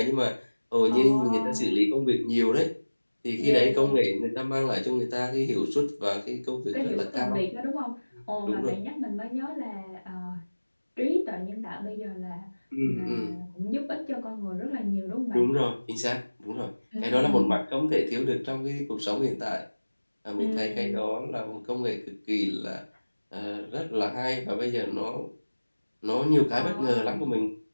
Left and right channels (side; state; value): both; inverted; correlation -1.00